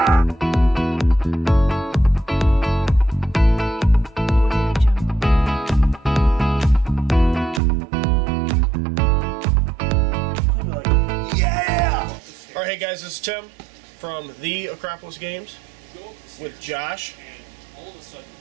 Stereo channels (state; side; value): drops out; left; at 7.6 s